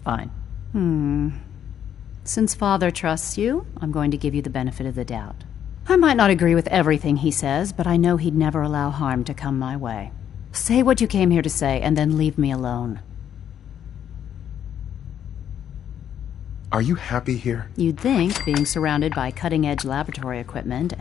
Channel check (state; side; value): quieter; right; 9.5 dB